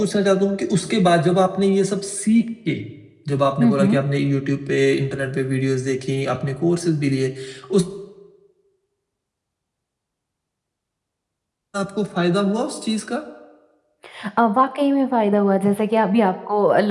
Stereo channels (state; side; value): identical; both; correlation 1.00